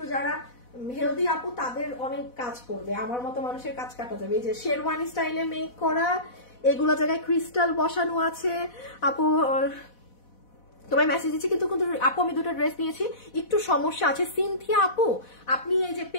যারা হেলদি আপু তাদের অনেক কাজ করবে, আমার মতো মানুষের কাজ কাটা যাবে। এই যে শেরওয়ানি স্টাইলে মেক করা, এগুলো জায়গায় ক্রিস্টাল বসানো আছে। আপু তোমার মেসেজ দিচ্ছি, কিন্তু আপু আমি দুটো ড্রেস নিয়েছি, একটু সমস্যা আছে। সিনথিয়া আপু, আপনি এই যে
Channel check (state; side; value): late; right; 4.1 ms